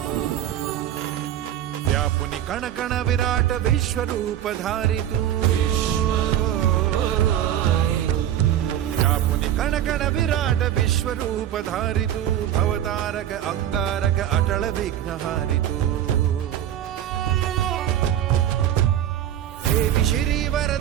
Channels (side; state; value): left; quieter; 11.2 dB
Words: व्यापुनी कण कण विराट विश्वरूप धारी तू व्यापुनी कण कण विराट विश्वरूप धारी तू भवतारक अंगारक अटल विघ्नहारी तू हे विशिरी